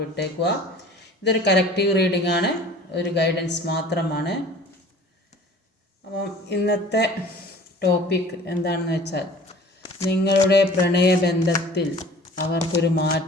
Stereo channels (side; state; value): both; normal; correlation 0.46